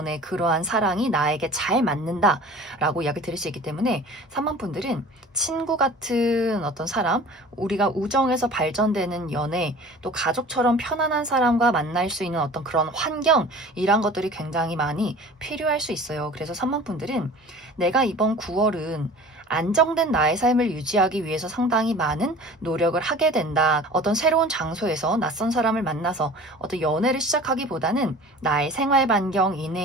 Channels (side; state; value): both; normal; correlation 0.42